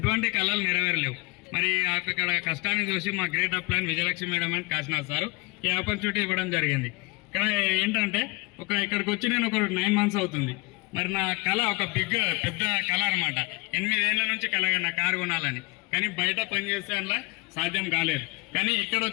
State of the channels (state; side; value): quieter; right; 25.2 dB